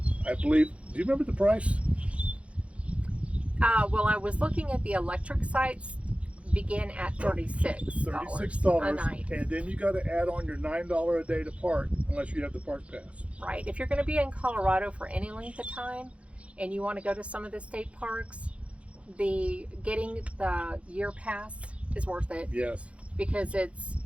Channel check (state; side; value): late; left; 0.062 ms